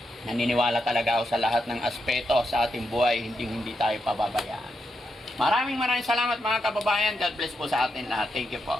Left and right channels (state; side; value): normal; both; correlation 0.84